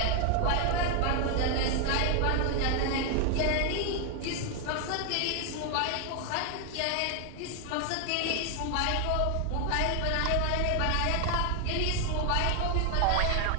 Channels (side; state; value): both; different; correlation 0.00